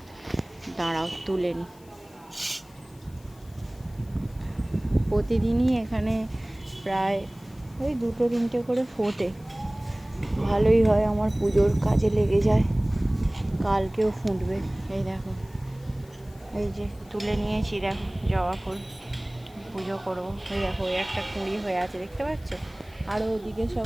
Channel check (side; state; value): left; noise; hiss, 27 dB below the sound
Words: দাঁড়াও তুলে নি। প্রতিদিনই এখানে প্রায় ওই 2-3টে করে ফোটে। ভালোই হয়, আমার পুজোর কাজে লেগে যায়। কালকেও ফুটবে। এই দেখো, এই যে তুলে নিয়েছি, দেখো জবা ফুল। পুজো করবো। ওই দেখো, ওই একটা কুঁড়ি হয়ে আছে, দেখতে পাচ্ছ? আরও ওদিকে